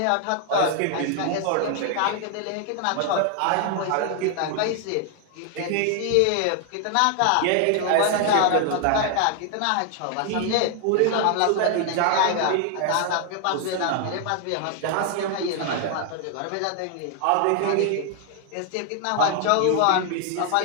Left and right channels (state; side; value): different; both; correlation 0.00